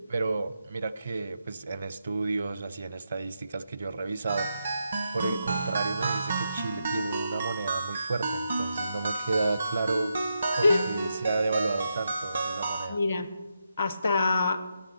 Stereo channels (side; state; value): both; inverted; correlation -0.84